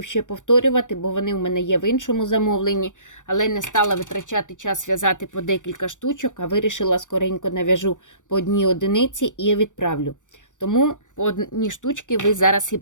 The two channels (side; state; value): right; late; 0.87 ms